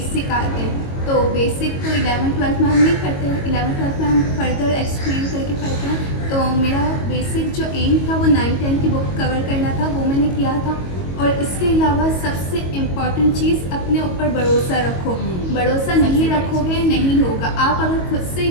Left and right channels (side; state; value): right; late; 22 ms